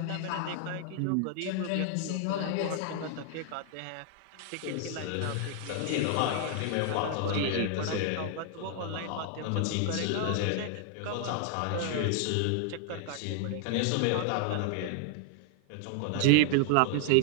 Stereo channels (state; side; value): different; both; correlation 0.00